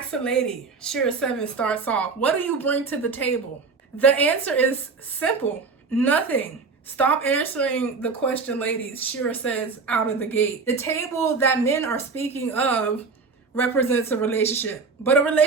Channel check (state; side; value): quieter; left; 4.6 dB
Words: a lady, Shereaseven starts off, what do you bring to the table? The answer is simple, nothing. Stop answering the question, ladies, Shera says out of the gate. The table that men are speaking of represents a relationship. But a